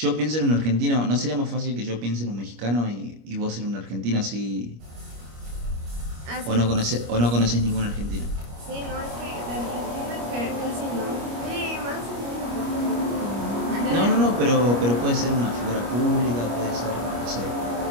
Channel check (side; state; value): left; late; 25 ms